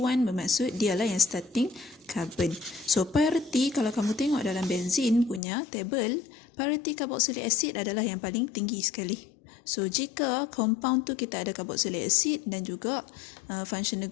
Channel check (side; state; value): right; drops out; at 5.4 s